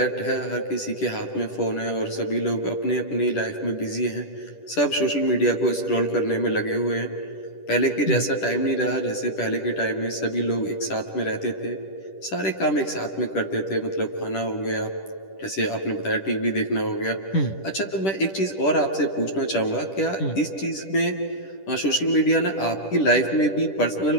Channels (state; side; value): late; right; 10 ms